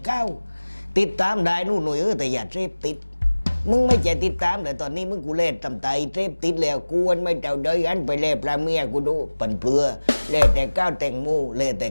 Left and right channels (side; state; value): both; inverted; correlation -1.00